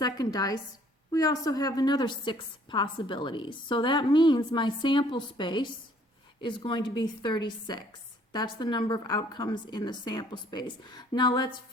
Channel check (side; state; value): both; normal; correlation 0.60